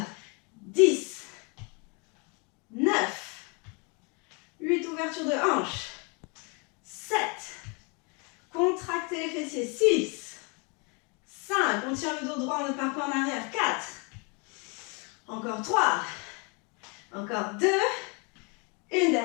10, 9, 8, ouverture de hanche. 7, contractez les fessiers. 6, 5, on tire le dos droit, on ne part pas en arrière. 4, encore 3, encore 2, une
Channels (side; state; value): right; quieter; 32.6 dB